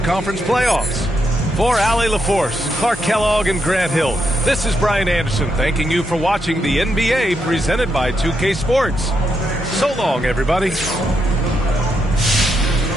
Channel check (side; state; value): both; normal; correlation 0.81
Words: Conference playoffs. For Allie LaForce, Clark Kellogg, and Grant Hill, this is Brian Anderson thanking you for watching the NBA presented by 2K Sports. So long, everybody.